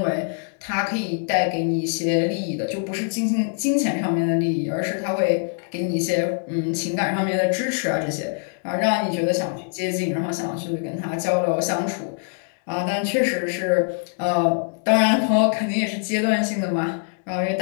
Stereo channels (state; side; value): silent; right; 63 dB below the other